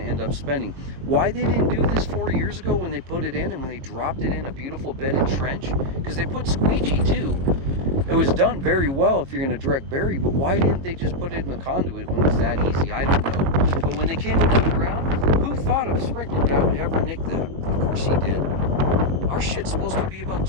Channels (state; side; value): late; left; 22 ms